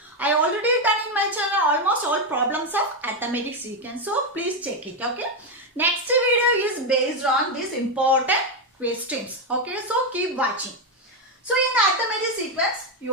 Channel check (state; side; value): normal; both; correlation 0.07